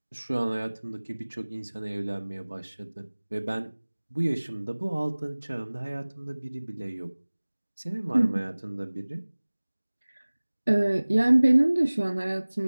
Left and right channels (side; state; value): both; inverted; correlation -1.00